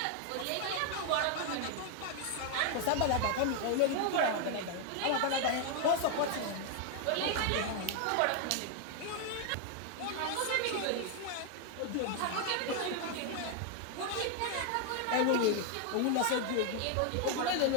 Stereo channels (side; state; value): both; different; correlation 0.00